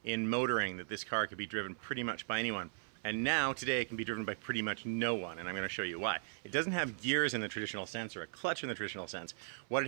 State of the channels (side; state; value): left; silent; 53 dB below the other